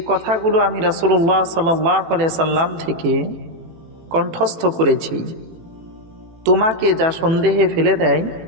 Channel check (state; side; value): late; left; 18 ms